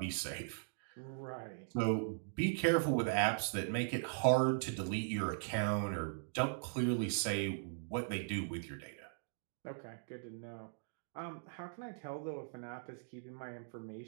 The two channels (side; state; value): left; silent; digital silence